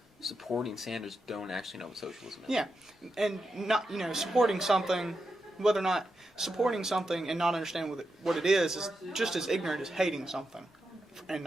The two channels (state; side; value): normal; both; correlation 0.87